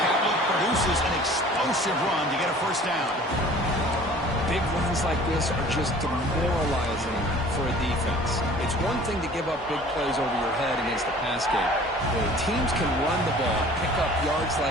produces an explosive run to get a first down. Big runs like this are just demoralizing for a defense. It's one thing to give up big plays over your head against the pass game. When teams can run the ball, pick up yards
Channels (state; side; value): normal; both; correlation 0.48